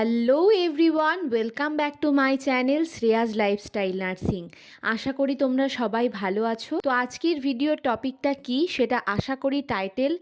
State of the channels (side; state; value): both; identical; correlation 1.00